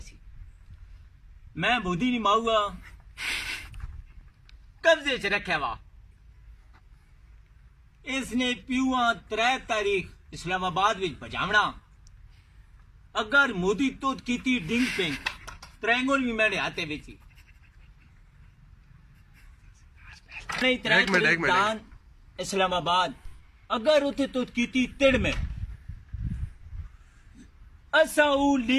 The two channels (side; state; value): both; identical; correlation 1.00